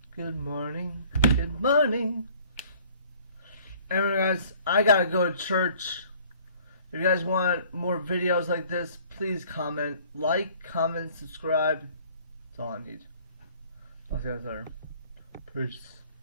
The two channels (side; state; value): both; inverted; correlation -0.54